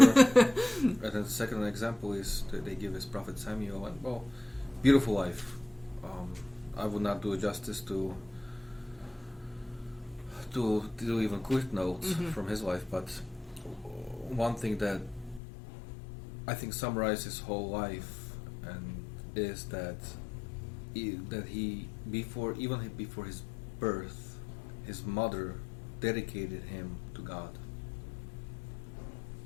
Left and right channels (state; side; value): drops out; right; at 15.4 s